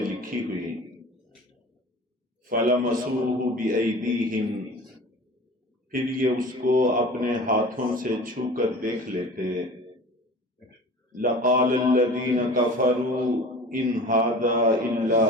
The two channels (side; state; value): both; normal; correlation 0.40